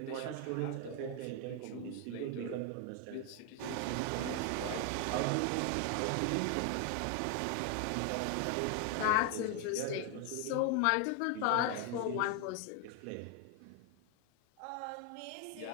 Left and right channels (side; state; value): both; different; correlation 0.01